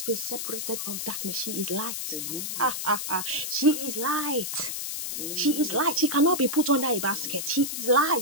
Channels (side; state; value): left; noise; hiss, 4 dB below the sound